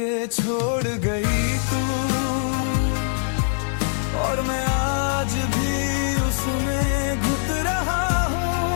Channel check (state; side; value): silent; right; digital silence